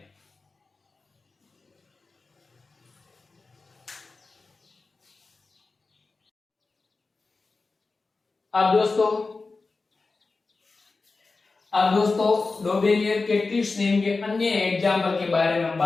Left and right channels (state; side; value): quieter; right; 3.9 dB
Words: अब दोस्तों डोबेलियर के ट्रिक्स नियम के अन्य एग्जाम्पल के बारे में हम